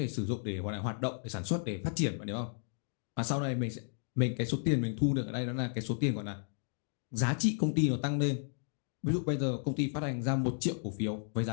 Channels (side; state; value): right; silent; 55 dB below the other